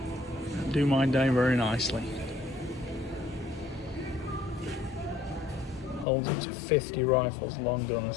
do mine down very nicely. Holds up to 50 rifles, long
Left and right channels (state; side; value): drops out; right; at 6.1 s